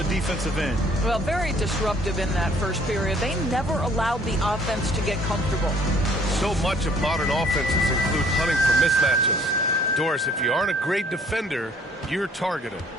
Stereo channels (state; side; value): normal; both; correlation 0.59